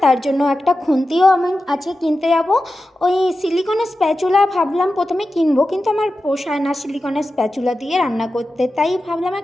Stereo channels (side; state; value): both; normal; correlation 0.92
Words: তার জন্য একটা খুন্তিও আমি আজকে কিনতে যাব। ওই সিলিকনের স্প্যাচুলা ভাবলাম প্রথমে কিনবো, কিন্তু আমার পোষায় না সিলিকনের স্প্যাচুলা দিয়ে রান্না করতে, তাই ভাবলাম